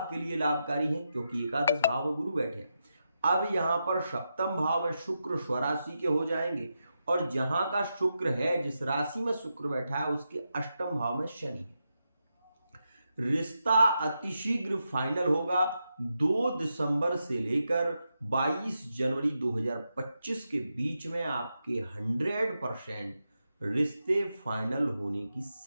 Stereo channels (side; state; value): both; inverted; correlation -0.87